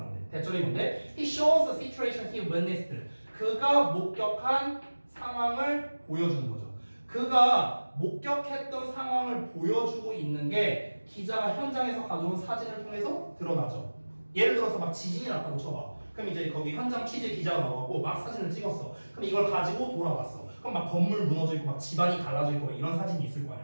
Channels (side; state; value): both; inverted; correlation -1.00